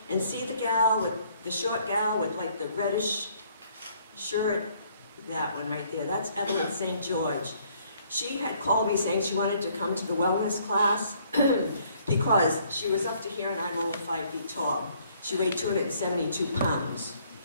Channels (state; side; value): inverted; both; correlation -0.63